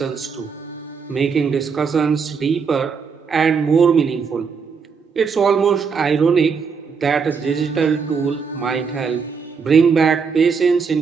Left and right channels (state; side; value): quieter; left; 5.7 dB